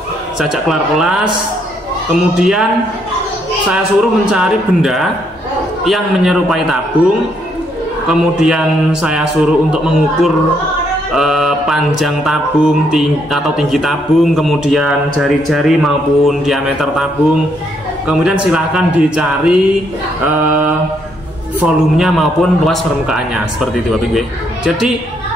saya ajak keluar kelas, kemudian saya suruh mencari benda yang menyerupai tabung, kemudian saya suruh untuk mengukur panjang tabung atau tinggi tabung, kemudian jari-jari maupun diameter tabung, kemudian silahkan dicari volumenya maupun luas permukaannya, seperti itu, Bapak Ibu. Jadi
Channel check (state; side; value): normal; both; correlation 0.73